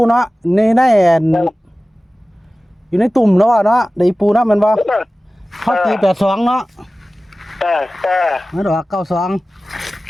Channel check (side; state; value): both; normal; correlation 0.96